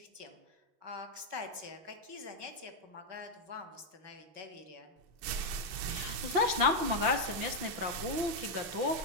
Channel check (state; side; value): late; left; 5.8 ms